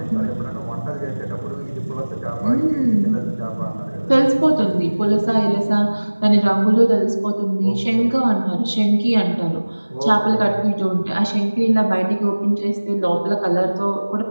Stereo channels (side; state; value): both; inverted; correlation -1.00